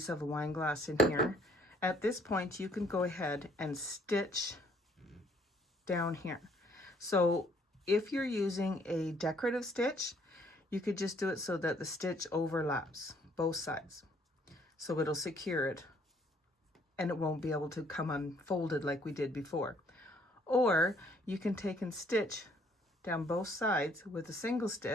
of a wine glass in here, at this point you can go ahead and stitch down here. So if you're using a decorative stitch, you could just do it so that the stitch overlaps both sides. So it'll secure it and it won't be able to come unfolded like we did before. Or you can take and stitch down both sides with a single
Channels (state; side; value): normal; both; correlation 0.64